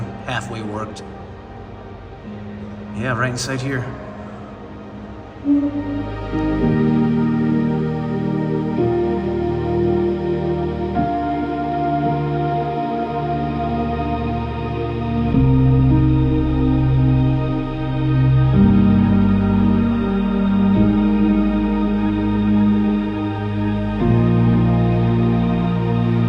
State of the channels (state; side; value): identical; both; correlation 1.00